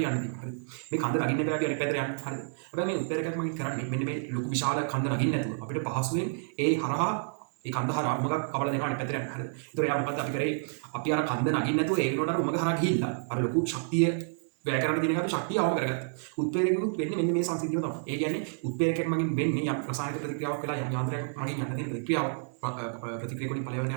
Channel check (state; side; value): silent; left; 58 dB below the other